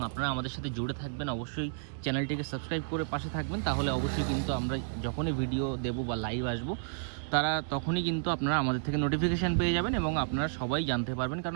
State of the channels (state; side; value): silent; left; digital silence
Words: আপনারা আমাদের সাথে জুড়ে থাকবেন। অবশ্যই চ্যানেলটিকে সাবস্ক্রাইব করে পাশে থাকবেন, তাহলে অবশ্যই কিন্তু আমরা যখনই ভিডিও দেবো বা লাইভ আসবো, তারা তখনই কিন্তু আপনারা আমাদের থেকে নোটিফিকেশান পেয়ে যাবেন, এবং আপনারা সবাই জানতে পারবেন।